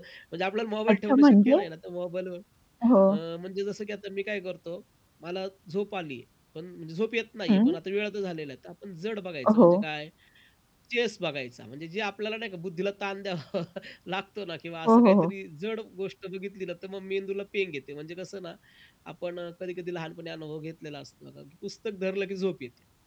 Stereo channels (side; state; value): both; identical; correlation 1.00